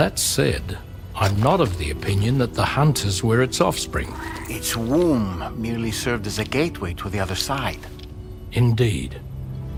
said, I'm not of the opinion that the hunters were its offspring. Its womb merely served as a gateway to the other side. Indeed.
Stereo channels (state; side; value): identical; both; correlation 1.00